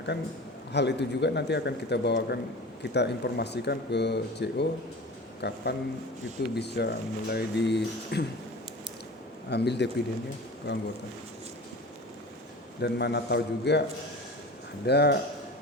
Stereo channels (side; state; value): both; normal; correlation 0.36